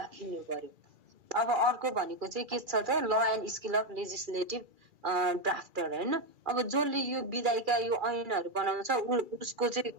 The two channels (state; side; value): late; left; 2.4 ms